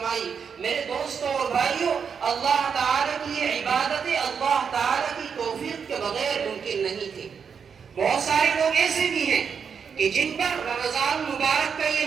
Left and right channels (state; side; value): quieter; left; 6.6 dB